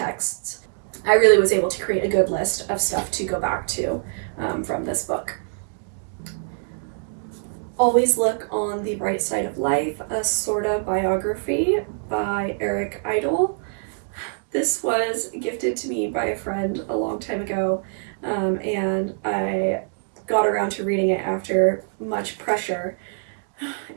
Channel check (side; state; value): left; silent; digital silence